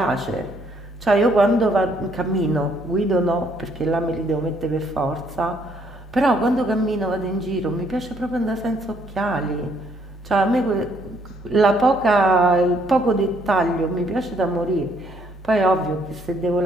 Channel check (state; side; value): normal; both; correlation 0.68